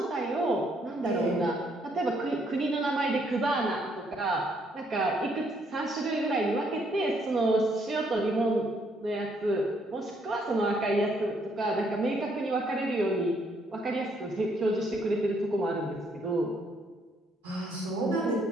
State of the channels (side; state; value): both; normal; correlation 0.70